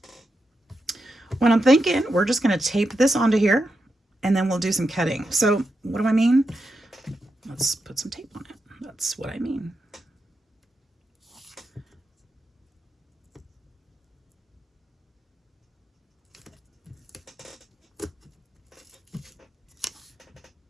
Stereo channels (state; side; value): normal; both; correlation 0.87